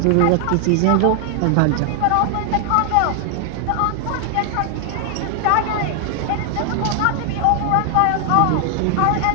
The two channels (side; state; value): both; different; correlation 0.00